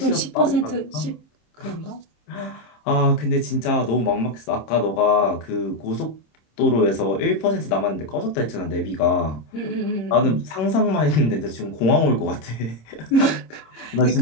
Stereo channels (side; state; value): right; late; 26 ms